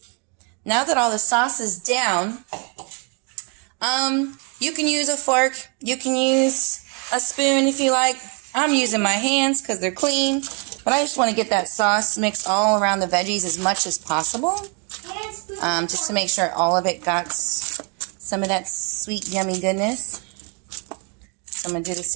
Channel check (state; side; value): quieter; left; 36.6 dB